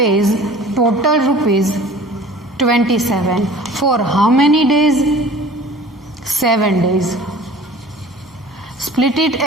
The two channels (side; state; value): both; normal; correlation 0.45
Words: total rupees 27. For how many days? 7 days. Split it